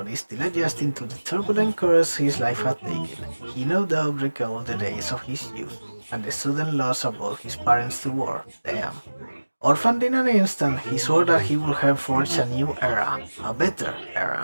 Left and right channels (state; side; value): inverted; both; correlation -1.00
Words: still adjusting to the turbulent course his life had taken, he no doubt recalled the days of his youth and the sudden loss of both his parents to war. Damn. Orphaned in an instant, he swore that he would have forged a new era, a better